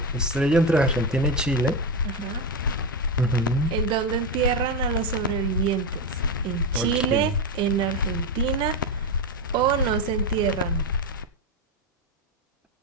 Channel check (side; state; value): both; normal; correlation 0.11